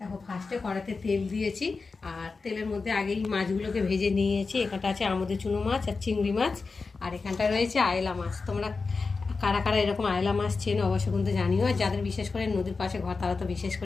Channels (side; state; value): right; quieter; 4.3 dB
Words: ফার্স্টে কড়াতে তেল দিয়েছি, আর তেলের মধ্যে আগেই মাছগুলোকে ভেজে নিয়েছি। এখানটা আছে আমুদের চুনো মাছ আর চিংড়ি মাছ, আর এখানটা রয়েছে আয়লা মাছ। তোমরা কারা কারা এরকম আয়লা মাছ চেনো অবশ্য কিন্তু জানিও, আর যাদের বিশেষ করে নদীর পাশে ঘর তারা তো বিশেষ